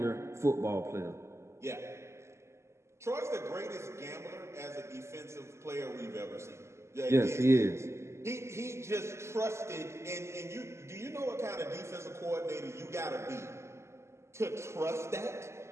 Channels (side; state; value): left; late; 0.13 ms